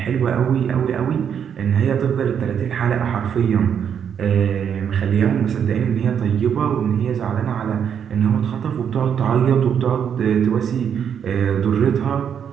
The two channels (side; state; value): left; quieter; 8.1 dB